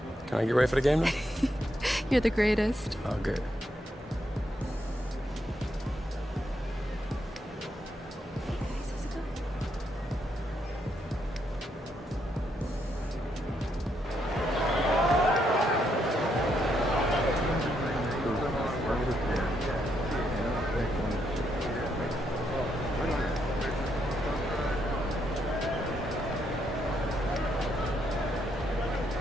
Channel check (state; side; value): normal; both; correlation 0.77